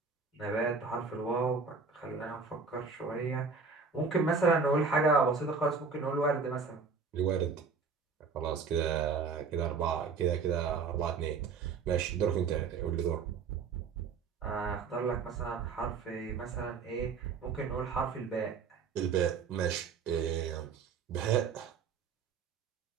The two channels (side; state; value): left; quieter; 5.2 dB